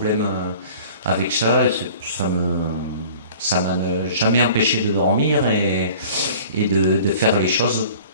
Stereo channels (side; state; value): both; inverted; correlation -0.46